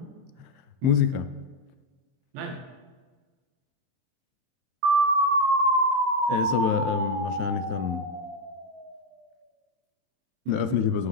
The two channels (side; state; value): left; late; 23 ms